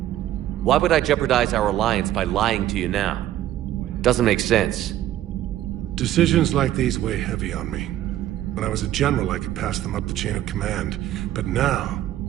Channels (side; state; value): left; quieter; 13.0 dB